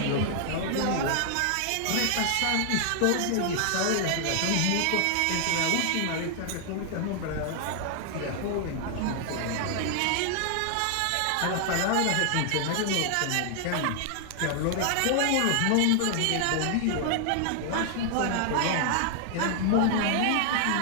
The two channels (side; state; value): both; different; correlation 0.00